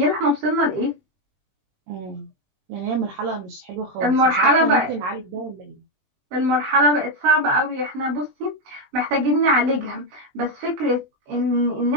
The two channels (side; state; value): left; late; 20 ms